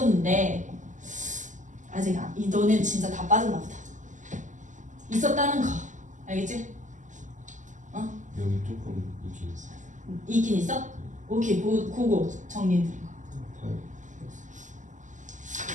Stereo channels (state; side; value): late; left; 0.37 ms